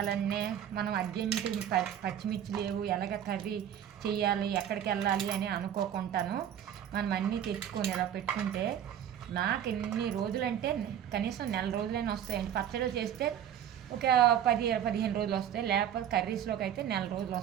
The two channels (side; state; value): left; quieter; 10.0 dB